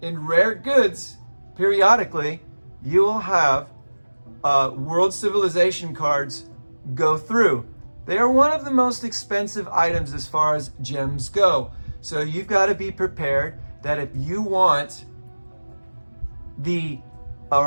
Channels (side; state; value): both; inverted; correlation -1.00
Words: in rare goods, periodically, you will have World Civilization cards go through. They are one of the most expensive items as far as gems go. So you've got to be prepared that if you want a